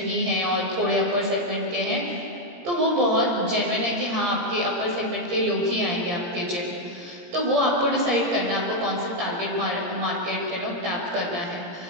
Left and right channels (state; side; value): late; left; 17 ms